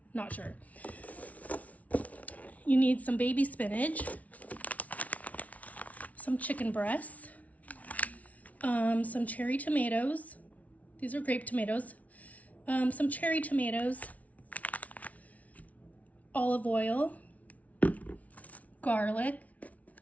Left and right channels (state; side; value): late; right; 0.069 ms